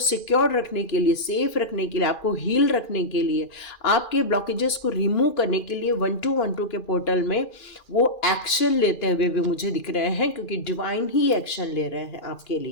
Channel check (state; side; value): late; right; 2.4 ms